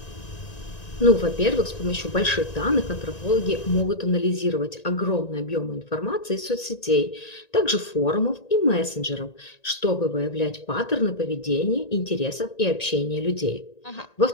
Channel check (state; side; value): late; right; 1.9 ms